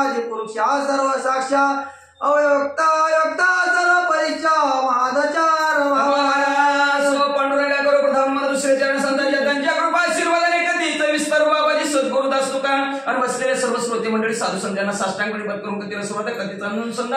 पुरुषा सर्व साक्षा अवयोक्ता योक्ता सर्व परीक्षा महादचार पांडुरंगा करो प्रथम दुसरे चरण संतांच्या त्यांच्या कृपा आशीर्वादाने कधीच विस्तार बाबाजी सद्गुरुदास तुका आणि बसलेले सर्व श्रोते मंडळी साधू संतांना साष्टांग प्रणिपात करून कधीला सुरुवात कधीच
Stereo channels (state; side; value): identical; both; correlation 1.00